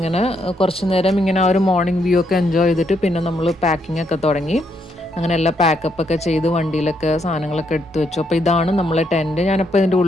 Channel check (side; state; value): both; normal; correlation 0.76